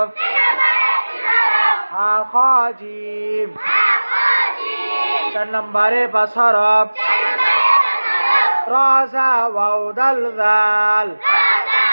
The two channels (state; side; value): inverted; both; correlation -1.00